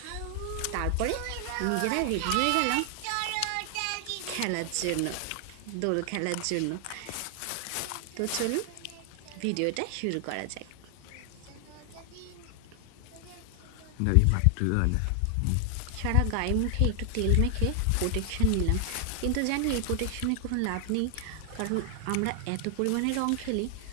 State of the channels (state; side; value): different; both; correlation 0.00